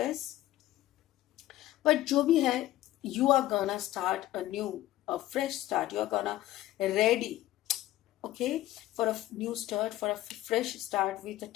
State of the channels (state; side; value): quieter; right; 15.0 dB